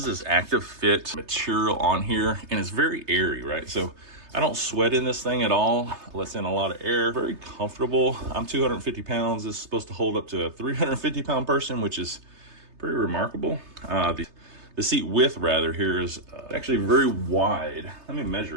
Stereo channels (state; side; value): late; left; 3.3 ms